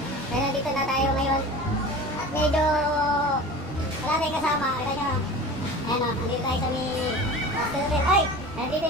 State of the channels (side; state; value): both; normal; correlation 0.36